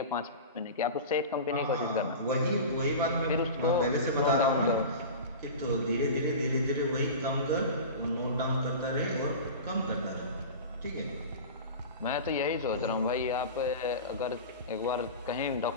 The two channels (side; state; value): both; inverted; correlation -0.31